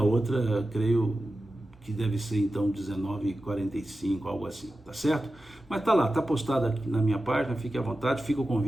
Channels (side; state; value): both; normal; correlation 0.93